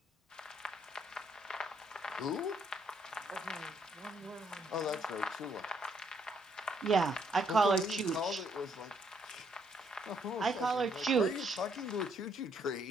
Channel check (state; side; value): normal; both; correlation 0.71